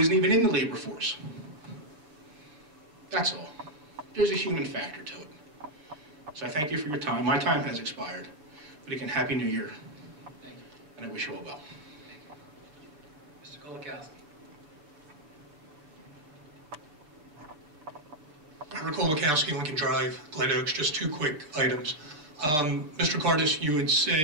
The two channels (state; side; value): late; left; 6.7 ms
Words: even in the labor force. That's all. There's a human factor to it. So I thank you for your time. My time has expired. But again, Happy New Year. Thank you. And I wish you all well. Thank you. Mr. Kolakowski. Robert Kolakowski, Lincoln Drive, Glen Oaks, just two quick items. Mr. Cardis, you had